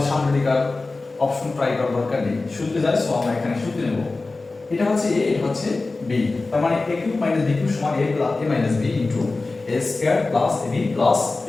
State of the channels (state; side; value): quieter; right; 3.5 dB